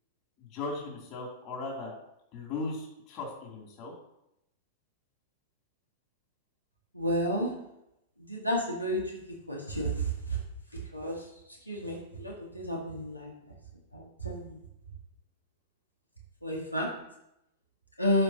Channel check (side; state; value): both; inverted; correlation -0.38